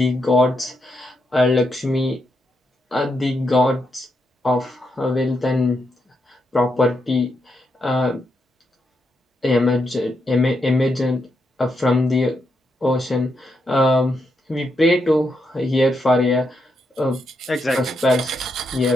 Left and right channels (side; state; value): both; normal; correlation 0.82